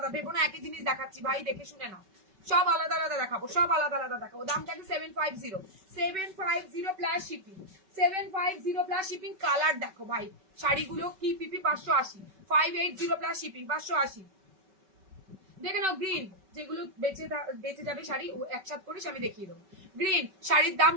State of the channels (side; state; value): left; late; 5.3 ms